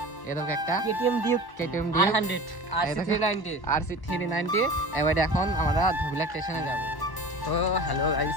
এরকম একটা KTM Duke KTM R100 RC390 RC390। এবারে এখন আমরা ধুবলা স্টেশনে যাব। তো হ্যালো গাইস,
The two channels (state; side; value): late; right; 1.1 ms